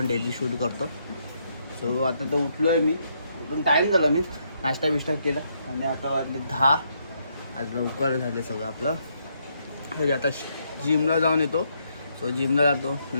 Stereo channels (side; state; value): both; inverted; correlation -0.75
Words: डेली शूट करतो. सो आता तर उठलो आहे मी, उठून टाईम झाला, मी नाश्ता बिष्टा केला आणि आता वाजले 10. आज लवकर झाले सगळं आपलं. तरी आता जिमला जाऊन येतो. सो जिमला जातो